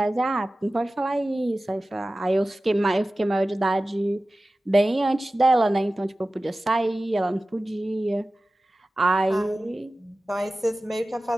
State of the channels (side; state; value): both; normal; correlation 0.96